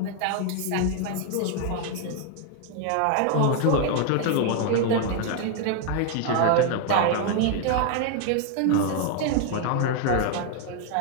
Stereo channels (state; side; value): different; both; correlation 0.00